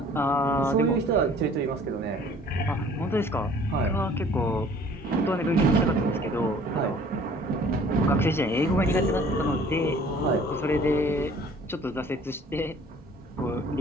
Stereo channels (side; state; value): both; normal; correlation 0.53